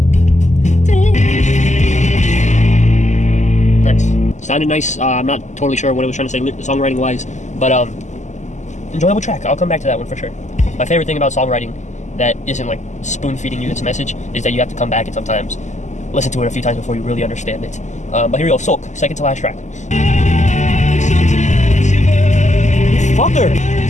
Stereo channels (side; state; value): right; late; 0.34 ms